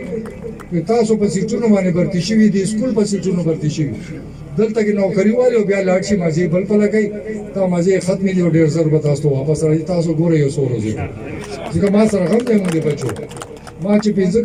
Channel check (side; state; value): both; identical; correlation 1.00